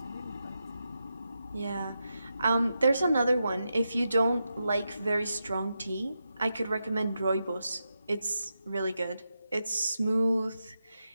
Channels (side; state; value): both; inverted; correlation -0.87